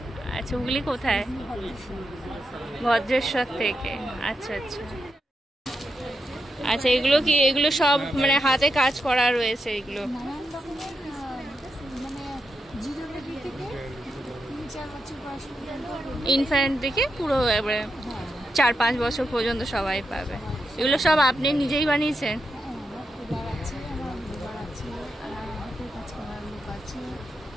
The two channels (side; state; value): both; normal; correlation 0.86